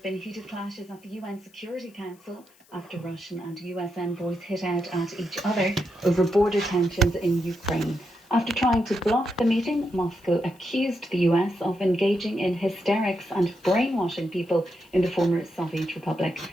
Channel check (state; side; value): noise; left; hiss, 30 dB below the sound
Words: been heated clashes at the UN Security Council after Russian and US envoys hit out at each other over border tensions in Ukraine. After trying to block the meeting, Moscow accused the US of engaging in hysterics and brainwashing people in the former Soviet Republic,